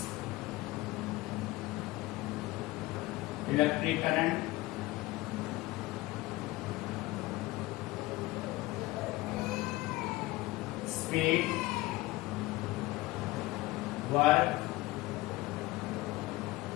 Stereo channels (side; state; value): right; quieter; 19.7 dB